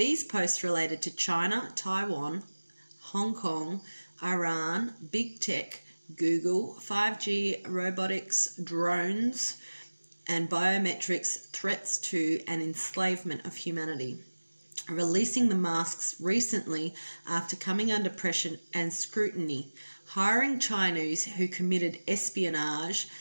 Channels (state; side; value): inverted; both; correlation -1.00